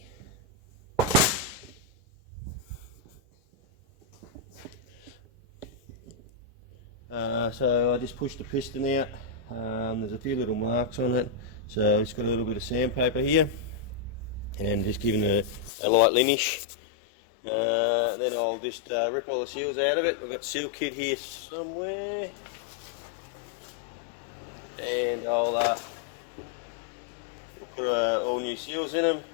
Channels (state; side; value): drops out; right; at 15.7 s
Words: So I just pushed the piston out. There's a few little marks on it, so it's got a little bit of sandpaper here and just giving it a light linish. Then I'll just rip all the seals out of it. We've got seal kit here somewhere, and we'll put all new seals in them,